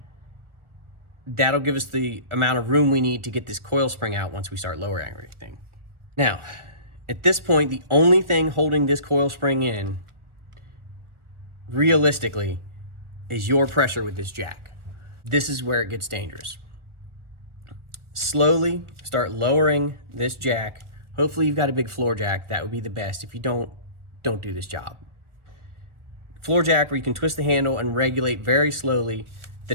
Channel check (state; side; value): late; left; 1.4 ms